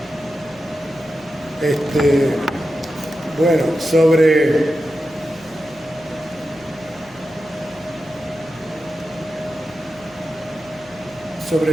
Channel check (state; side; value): noise; left; hum, 26 dB below the sound